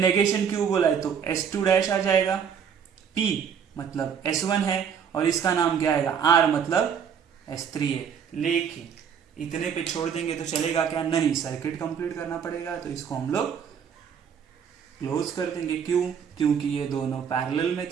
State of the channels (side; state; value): left; quieter; 7.5 dB